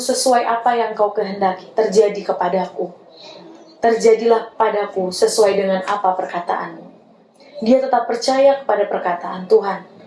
apa yang kau kehendaki, terjadi kepadaku. Terjadilah padaku sesuai dengan apa perkataanmu. Dia tetap percaya kepada perkataan Tuhan,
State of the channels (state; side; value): identical; both; correlation 1.00